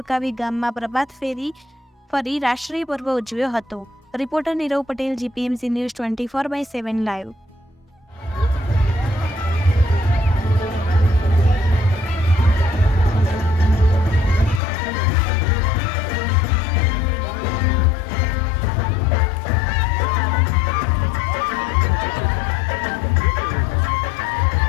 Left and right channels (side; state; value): right; drops out; at 14.6 s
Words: ગામમાં પ્રભાત ફેરી ફરી રાષ્ટ્રીય પર્વ ઉજવ્યો હતો। Reporter Nirav Patel, GPMC news 24/7 live.